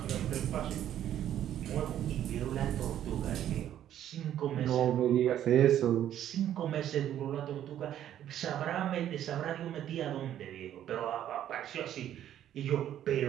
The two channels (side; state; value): left; quieter; 11.1 dB